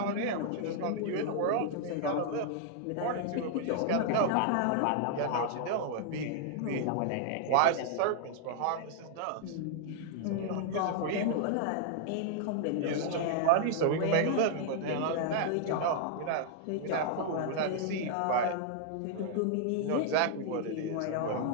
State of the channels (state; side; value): different; both; correlation 0.00